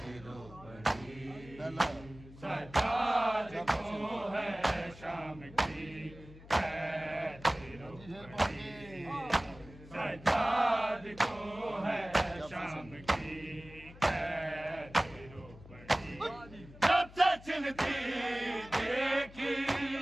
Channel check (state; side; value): noise; left; hum, 19 dB below the sound